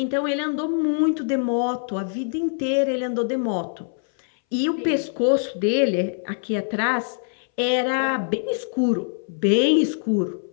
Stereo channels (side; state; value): right; silent; 61 dB below the other